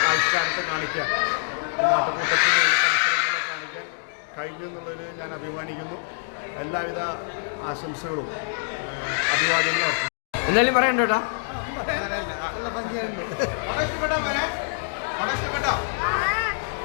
ആവിഷ്കാരത്തെ കാണിക്കാൻ, നാട്ടുകൂട്ടത്തിൽ പരിസരങ്ങളെ കാണിക്കാൻ കഴിഞ്ഞു എന്നുള്ളതിൽ ഞാൻ അഭിമാനിക്കുന്നു. എല്ലാവിധ ആശംസകളും അഭിവാദ്യങ്ങളും. എന്തായാലും പറയണ്ട കേട്ടാ.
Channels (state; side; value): silent; right; digital silence